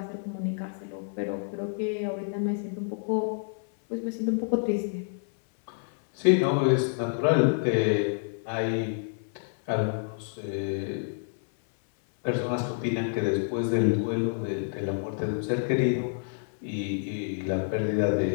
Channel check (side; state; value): right; silent; 59 dB below the other